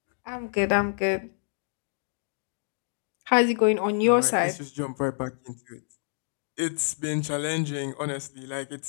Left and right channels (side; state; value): right; silent; digital silence